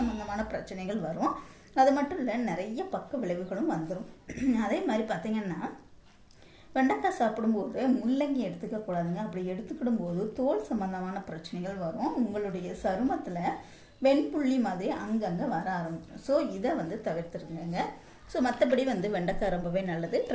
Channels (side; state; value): both; identical; correlation 1.00